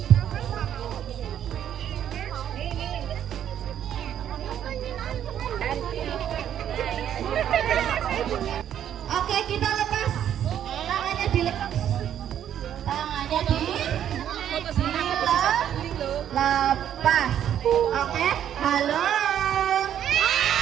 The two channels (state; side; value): quieter; left; 10.1 dB